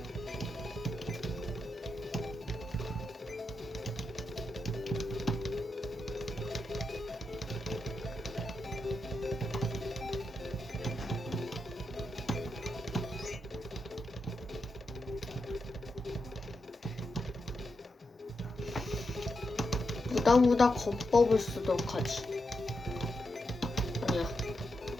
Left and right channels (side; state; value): both; normal; correlation 0.86